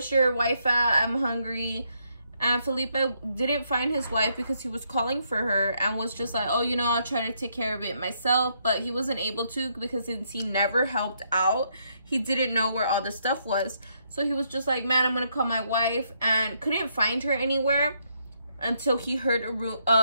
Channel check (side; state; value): both; inverted; correlation -0.75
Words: your wife at? I'm hungry. And Felipe didn't find his wife because he was calling for her and was just like, oh, you know, I'll try to take care of it myself. But he wasn't able to because since he never helped out, he didn't know where all the stuff was. So he was just like, man, I'm going to call my wife, and couldn't find her anywhere until he heard